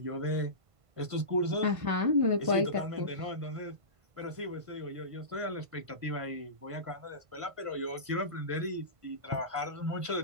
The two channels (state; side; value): late; left; 1.5 ms